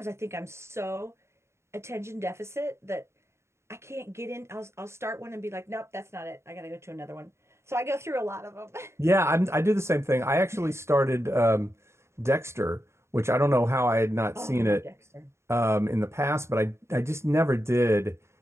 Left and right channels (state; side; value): late; left; 0.13 ms